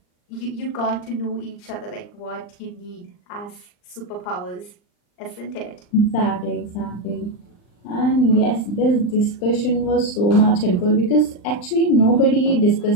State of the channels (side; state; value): right; late; 39 ms